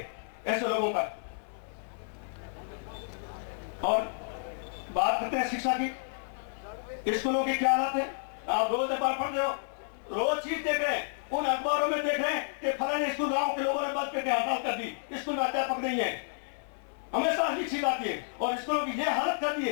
ऐसे लोगों का। और बात करते हैं शिक्षा की, स्कूलों की क्या हालत है? आप रोज अखबार पढ़ रहे हो, रोज चीज देख रहे हैं, उन अखबारों में देख रहे हैं कि फलाने स्कूल गांव के लोगों ने बंद करके हड़ताल कर दी, स्कूल में अध्यापक नहीं है। हमेशा ये चीज आती है और स्कूलों की ये हालत कर दी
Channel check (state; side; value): silent; right; 57 dB below the other